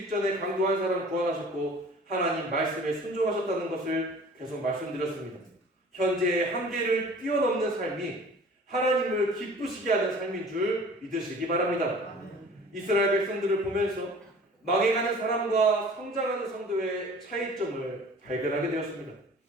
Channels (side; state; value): both; normal; correlation 0.46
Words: 강도 한 사람 구원하셨고 하나님 말씀에 순종하셨다는 것을 계속 말씀드렸습니다. 현재의 한계를 뛰어넘는 삶이 하나님을 기쁘시게 하는 삶인 줄 믿으시기 바랍니다. 이스라엘 백성들을 보면서 망해가는 사람과 성장하는 성도의 차이점을 발견하게 되었습니다.